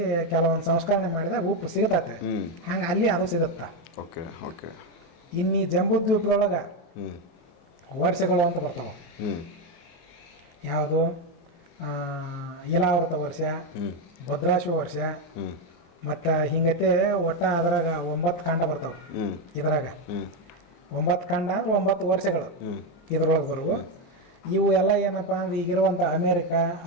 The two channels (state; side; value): late; right; 23 ms